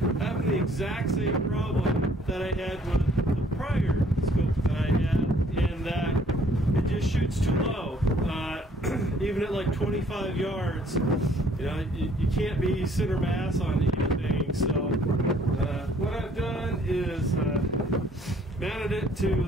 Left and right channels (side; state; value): both; normal; correlation 0.61